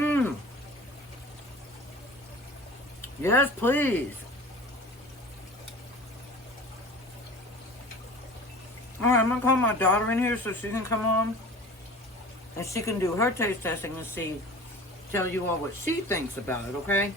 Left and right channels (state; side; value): normal; both; correlation 0.40